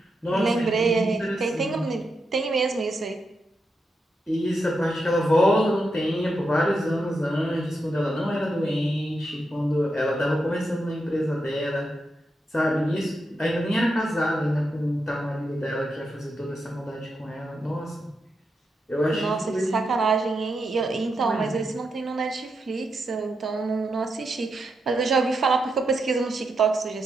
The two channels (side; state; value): both; normal; correlation 0.85